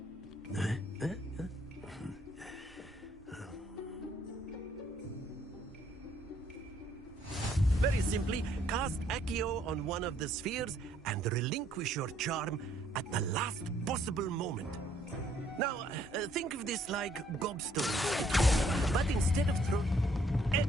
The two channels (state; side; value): normal; both; correlation 0.66